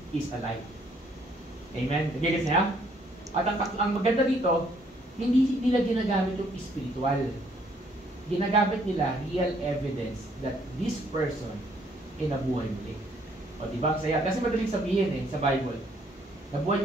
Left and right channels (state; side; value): normal; both; correlation 0.66